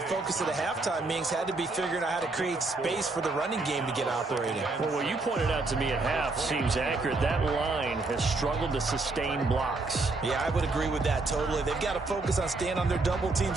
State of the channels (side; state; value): left; quieter; 3.4 dB